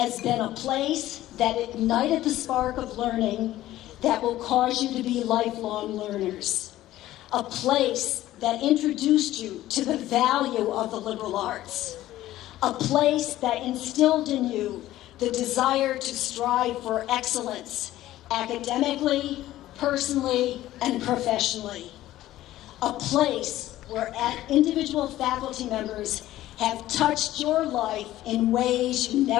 been a place that ignited the spark of learning that will cause you to be lifelong learners. A place that introduced you to the value of the liberal arts. A place that instilled in you the desire to strive for excellence, academically, personally, and professionally. A place where individual faculty members have touched your life in ways you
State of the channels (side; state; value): right; quieter; 14.7 dB